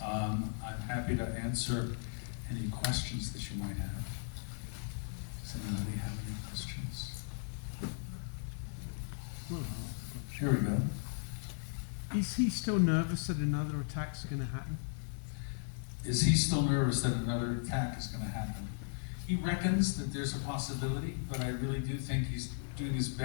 I'm happy to answer any questions that you might have. Does anybody have any questions? Here we go. Is he still nervous that another attack's going to happen? Is he still nervous that another attack is going to happen? He reckons that there's a possibility, but I really do think he's doing his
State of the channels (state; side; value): silent; right; digital silence